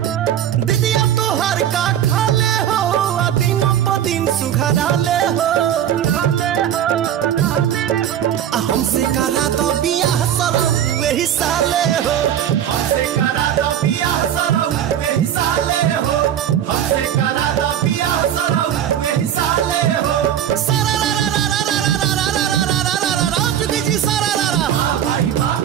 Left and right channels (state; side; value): quieter; left; 10.2 dB